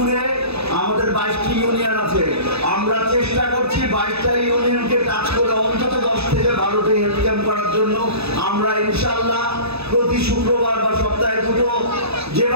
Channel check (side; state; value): left; late; 0.79 ms